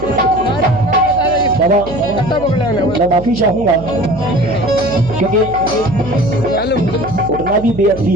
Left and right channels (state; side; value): noise; right; hum, 13 dB below the sound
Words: बाबा मैं माफी चाहूंगा, क्योंकि उठना भी बेअदबी